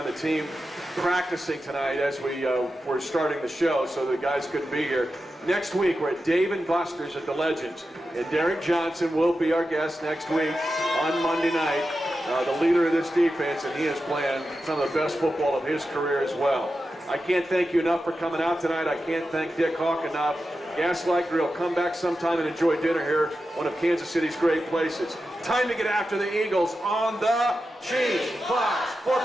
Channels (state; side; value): normal; both; correlation 0.91